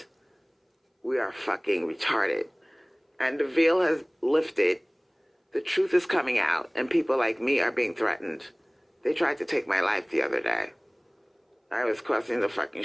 we are fucking retarded. And the veil has lifted. The truth is coming out, and people like me are being threatened. They tried to take my life the other day. I was crossing the fucking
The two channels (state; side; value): identical; both; correlation 1.00